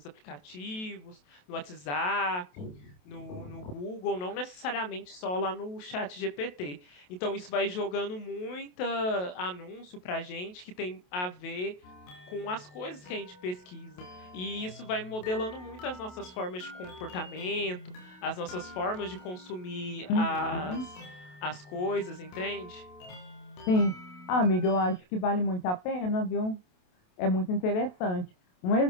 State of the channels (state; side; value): late; right; 28 ms